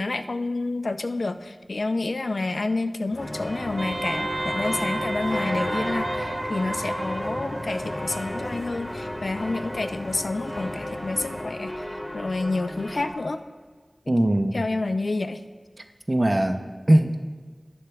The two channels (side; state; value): both; normal; correlation 0.98